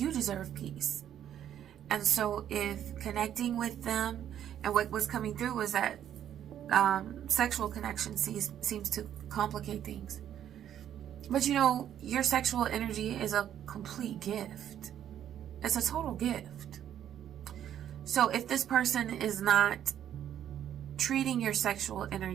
deserve peace. And so if connecting with them, and what was coming through was that sexual connection seems to complicate things. But you know, your sexual energy is a complete gift. It's a total gift. So if this person is not treating your sexual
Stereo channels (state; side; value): quieter; left; 10.4 dB